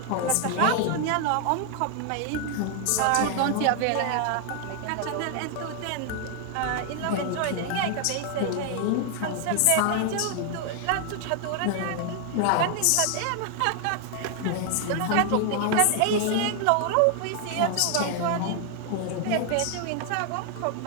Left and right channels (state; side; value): different; both; correlation 0.00